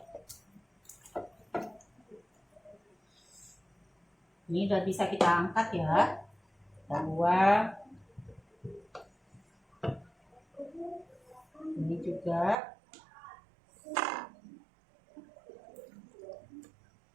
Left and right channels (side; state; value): left; drops out; at 12.6 s